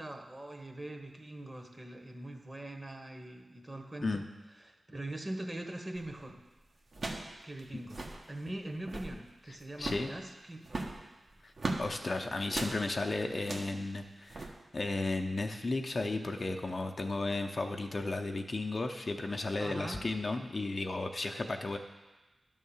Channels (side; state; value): both; normal; correlation 0.95